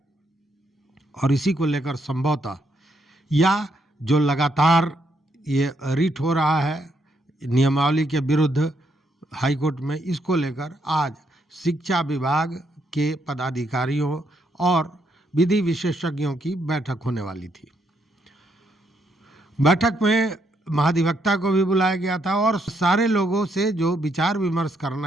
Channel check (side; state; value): both; normal; correlation 0.76